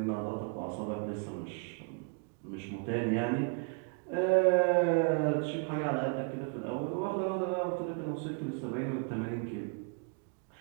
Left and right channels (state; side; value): quieter; left; 38.8 dB